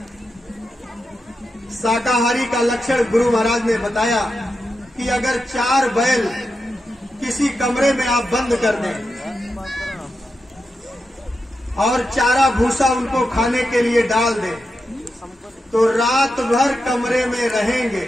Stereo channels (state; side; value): normal; both; correlation 0.88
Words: शाकाहारी का लक्षण गुरु महाराज ने बताया कि अगर 4 बैल किसी कमरे में आप बंद कर दें और चारा भूसा उनको खाने के लिए डाल दें तो रात भर कमरे में रहेंगे